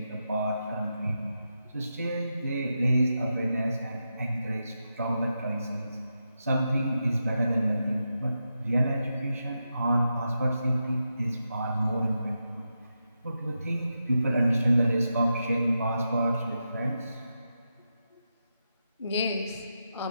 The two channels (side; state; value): both; inverted; correlation -0.88